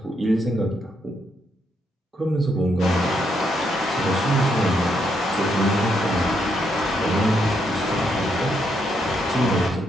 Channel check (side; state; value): both; normal; correlation 0.77